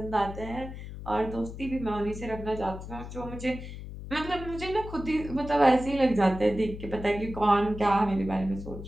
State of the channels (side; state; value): left; noise; hum, 10 dB below the sound